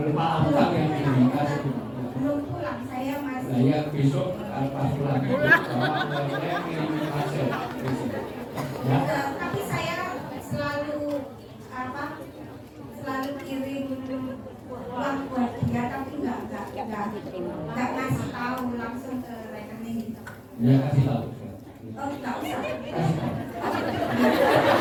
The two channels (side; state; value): both; identical; correlation 1.00